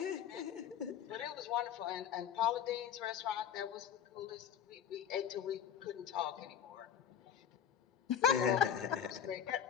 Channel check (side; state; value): right; quieter; 8.8 dB